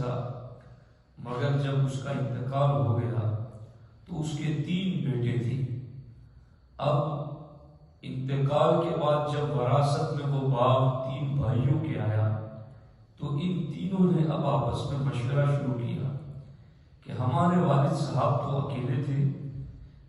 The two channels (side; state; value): both; identical; correlation 1.00